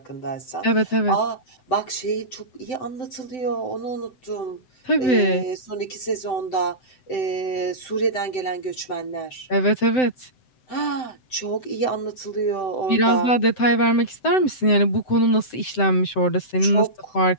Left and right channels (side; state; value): right; late; 7.8 ms